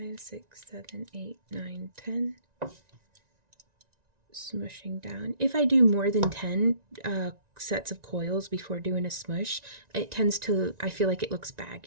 6, 7, 8, 9, 10. Smushing down. If I do more than 10 sets of coils before doing a smush, it tends to, I feel like it looks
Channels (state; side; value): late; left; 1.9 ms